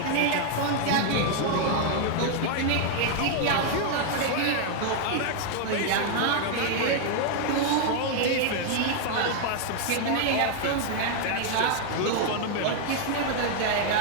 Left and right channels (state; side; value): different; both; correlation 0.00